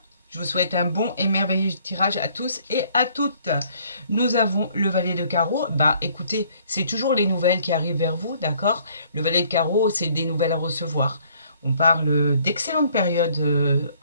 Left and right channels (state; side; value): inverted; both; correlation -0.61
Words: Je vous souhaite un bon et merveilleux tirage à tous et à toutes. Nous avons le valet de carreau. Bah écoutez, c'est toujours les nouvelles qui arrivent vers vous, d'accord? Le valet de carreau, c'est des nouvelles à recevoir. On parle d'excellentes périodes